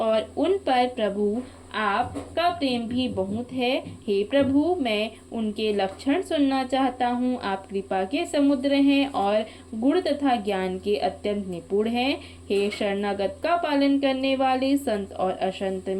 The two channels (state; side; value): identical; both; correlation 1.00